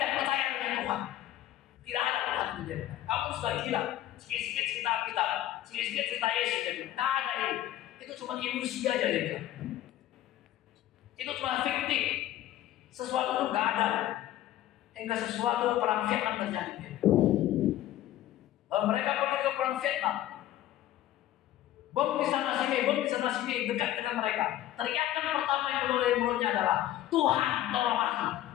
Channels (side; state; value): right; quieter; 13.4 dB